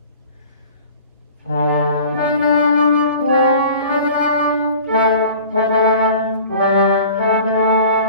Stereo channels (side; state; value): both; inverted; correlation -0.44